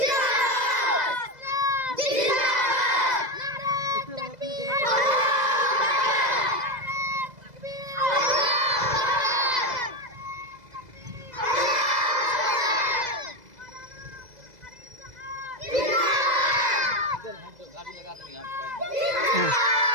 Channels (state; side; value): late; left; 2.0 ms